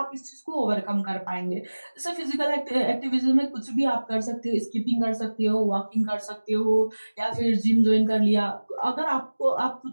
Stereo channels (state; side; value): inverted; both; correlation -1.00